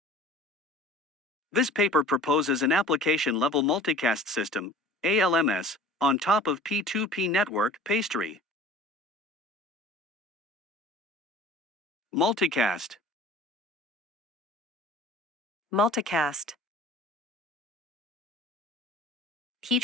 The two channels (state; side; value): normal; both; correlation 0.44